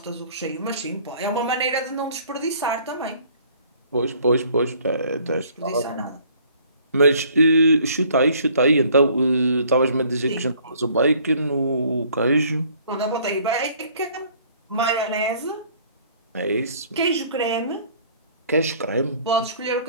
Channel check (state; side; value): inverted; both; correlation -0.57